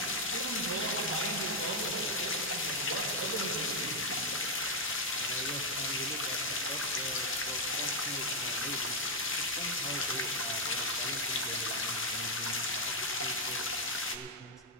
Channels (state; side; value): normal; both; correlation 0.00